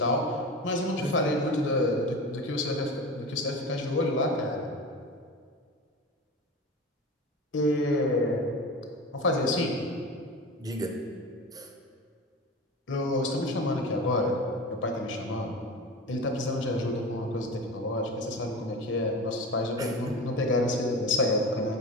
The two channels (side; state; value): both; normal; correlation 0.30